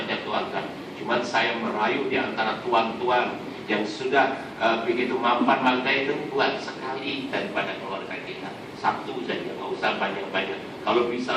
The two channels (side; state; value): both; identical; correlation 1.00